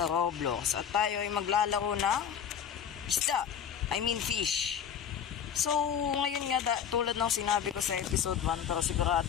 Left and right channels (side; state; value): right; quieter; 8.2 dB